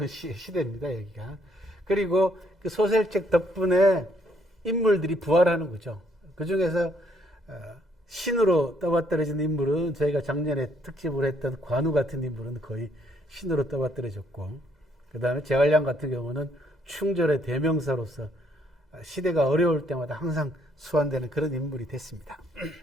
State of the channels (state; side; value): normal; both; correlation 0.69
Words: 시대입니다. 여기가. 그리고 그 소설책 덕분에 인물들이 부활하는 거죠. 그 중에서 신으로 떠받들어진 인물은 저희가 작년에 특집을 했던 관우 같은 인물은 거의 신으로 떠받들어졌고, 그 다음에 제갈량 같은 경우는 충절의 대명사로서 시대가 어려울 때마다 항상 수완되는 그런 인물이 됐습니다.